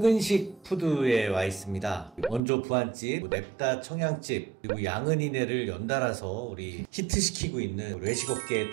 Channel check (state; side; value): drops out; left; at 2.4 s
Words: 푸드에 와 있습니다. 원조 부안집, 냅다 청양집, 그리고 양은이네를 연달아서 우리 히트시키고 있는 외식업계에